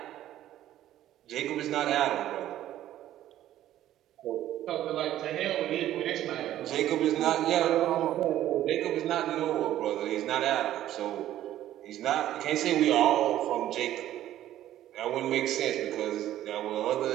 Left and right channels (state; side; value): quieter; left; 12.9 dB